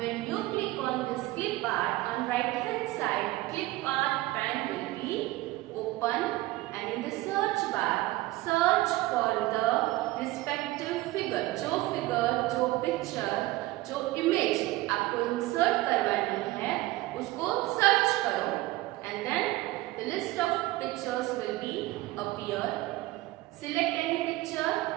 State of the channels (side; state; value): left; quieter; 18.5 dB